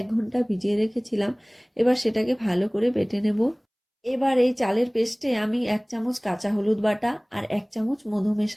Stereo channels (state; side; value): identical; both; correlation 1.00